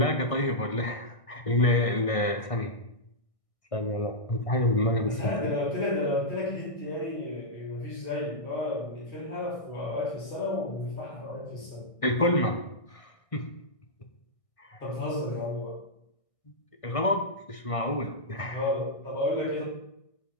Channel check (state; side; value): late; right; 1.6 ms